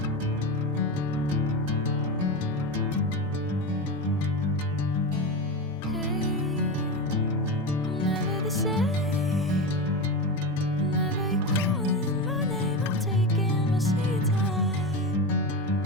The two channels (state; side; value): normal; both; correlation 0.20